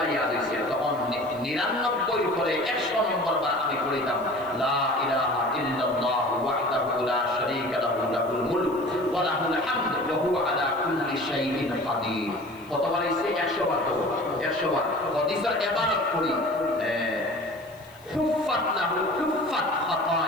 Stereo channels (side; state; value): left; noise; hiss, 27 dB below the sound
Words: ইয়াদ হইছে তখন 99 পরে 100 নম্বর বার আমি পড়িতাম লা ইলাহা ইল্লাল্লাহু ওয়াহদাহু লা শারীকা লাহু লাহুল মুলক ওয়া লাহুল হামদু ওয়া হুয়া আলা কুল্লি শাইইন কাদির কতবার হইছে 100 বার তো 100 বার হাদিসের ইবারত পড়ি হুফাত লাহু হুফাত